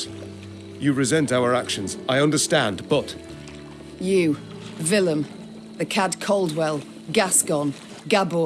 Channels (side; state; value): both; identical; correlation 1.00